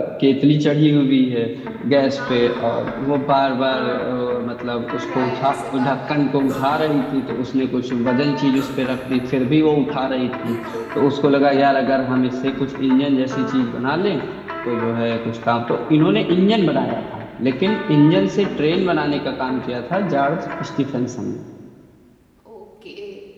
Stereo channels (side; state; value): both; identical; correlation 1.00